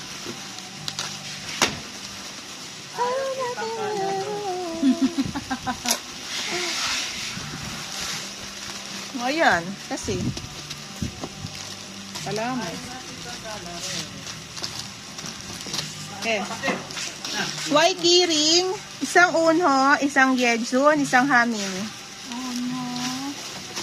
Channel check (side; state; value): both; identical; correlation 1.00